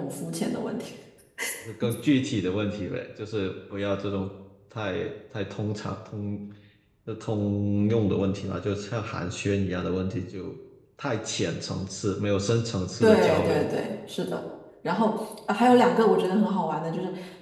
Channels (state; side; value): identical; both; correlation 1.00